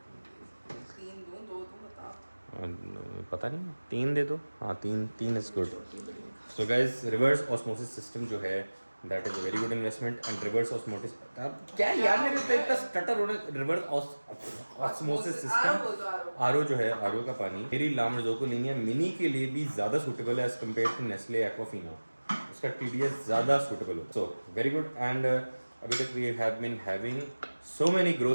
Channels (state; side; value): inverted; both; correlation -1.00